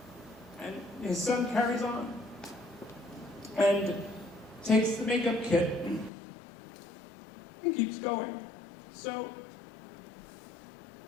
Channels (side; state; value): right; drops out; at 6.1 s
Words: And his son carries on and takes the makeup kit and keeps going. So